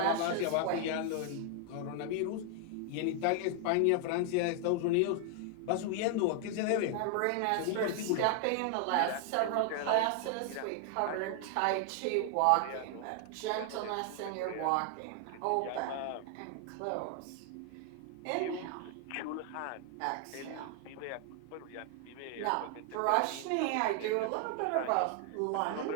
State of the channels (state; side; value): different; both; correlation 0.00